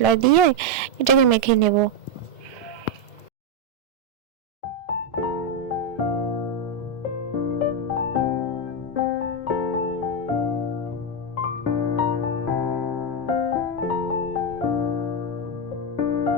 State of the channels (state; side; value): late; right; 1.7 ms